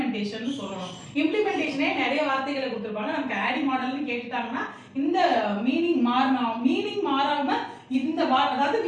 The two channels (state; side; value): identical; both; correlation 1.00